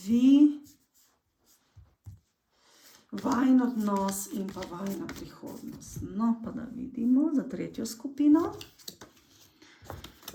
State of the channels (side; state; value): both; identical; correlation 1.00